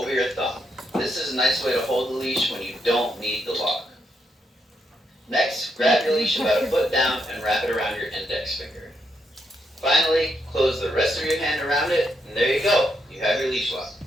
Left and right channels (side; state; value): both; normal; correlation 0.79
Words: your thumb. This is a nice way to hold the leash when you don't need the lock. Next, grab your leash about a foot down and wrap it around your index finger. Finally, close the rest of your hand around it, and there you go. You have your leash lock.